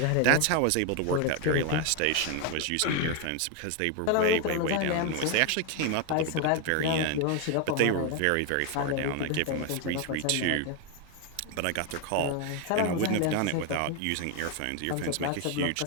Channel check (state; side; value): different; both; correlation 0.01